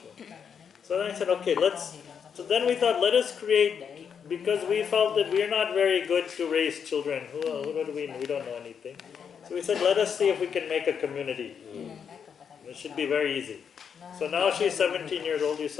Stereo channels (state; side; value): quieter; right; 7.2 dB